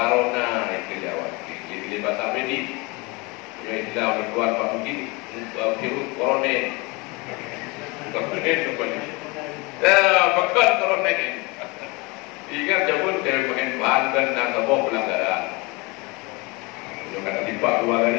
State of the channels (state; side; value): quieter; right; 26.3 dB